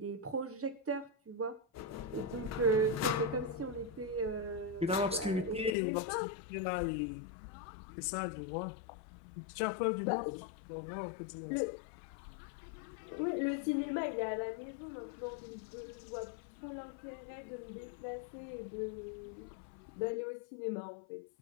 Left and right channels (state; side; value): drops out; right; at 5.8 s